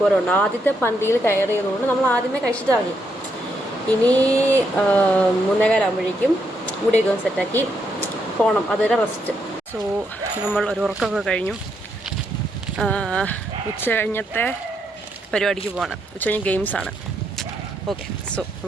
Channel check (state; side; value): normal; both; correlation 0.78